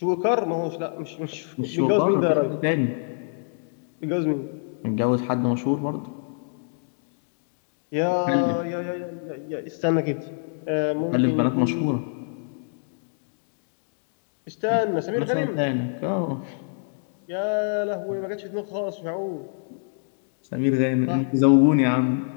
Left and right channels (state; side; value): silent; right; digital silence